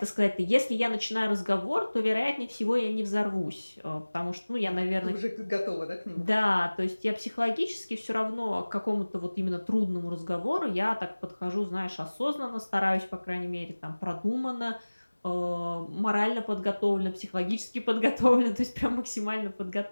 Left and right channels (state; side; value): inverted; both; correlation -1.00